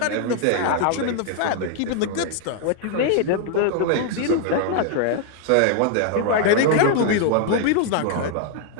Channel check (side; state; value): both; different; correlation 0.00